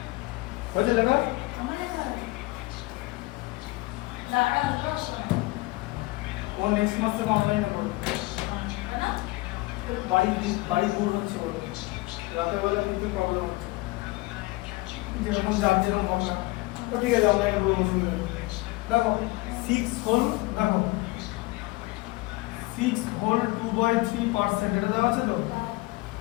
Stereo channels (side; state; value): right; quieter; 22.0 dB